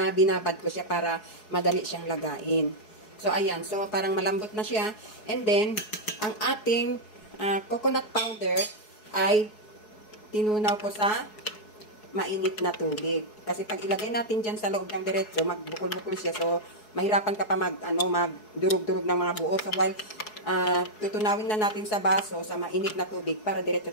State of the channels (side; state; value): right; late; 4.7 ms